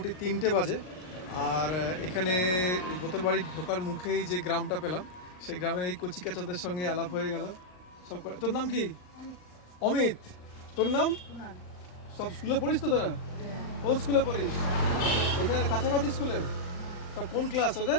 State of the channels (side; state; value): right; late; 39 ms